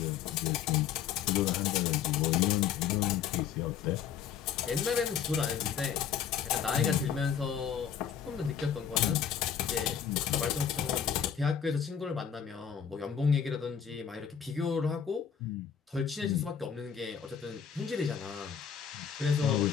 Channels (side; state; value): right; quieter; 8.1 dB